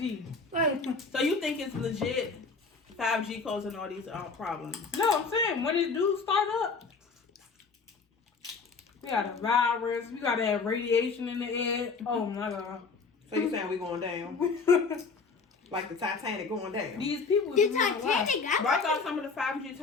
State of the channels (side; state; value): right; quieter; 4.7 dB